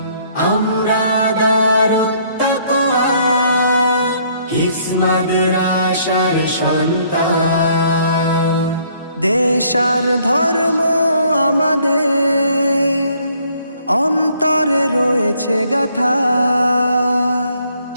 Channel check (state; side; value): inverted; both; correlation -0.64